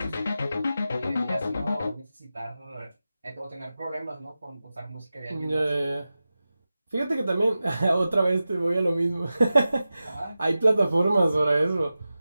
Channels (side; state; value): both; inverted; correlation -0.94